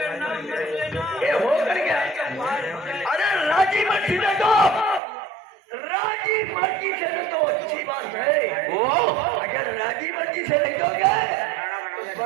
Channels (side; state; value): left; drops out; at 5.0 s